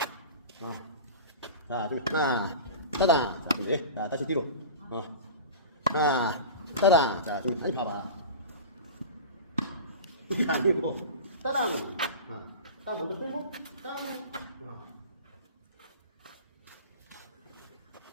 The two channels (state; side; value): inverted; both; correlation -0.32